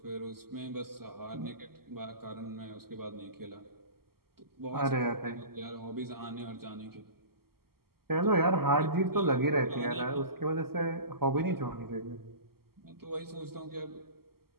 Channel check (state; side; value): late; left; 0.94 ms